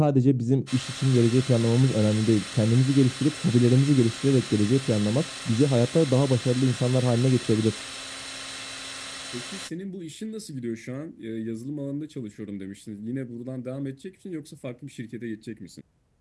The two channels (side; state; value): both; identical; correlation 1.00